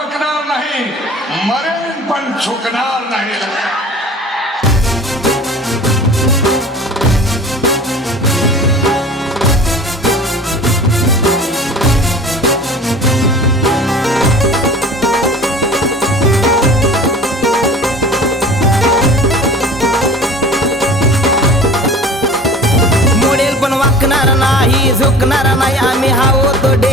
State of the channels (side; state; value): both; normal; correlation 0.41